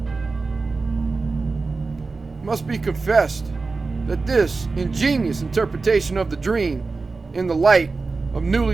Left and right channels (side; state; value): left; quieter; 4.0 dB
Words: It must be confessed that this ingenious interpretation of the dream in the light of newly